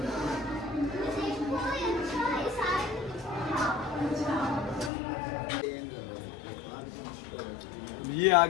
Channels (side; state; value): right; drops out; at 4.9 s